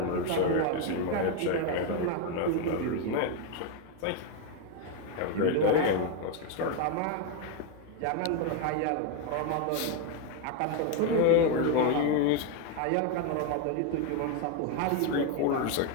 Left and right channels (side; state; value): both; different; correlation 0.02